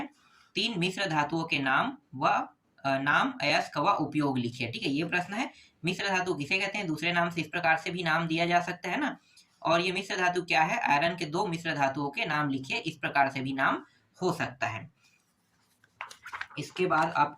3 मिश्र धातुओं के नाम व नाम अयस्क व उपयोग लिखिए, ठीक है। ये प्रश्न है, मिश्र धातु किसे कहते हैं, दूसरे नाम से इस प्रकार से भी नाम दिया जा सकता है ना। और ये मिश्र धातु क्या है, आयरन के 2 मिश्र धातुओं के नाम लिखिए, इस प्रकार से भी नाम हो सकता है। इसके बाद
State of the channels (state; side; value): identical; both; correlation 1.00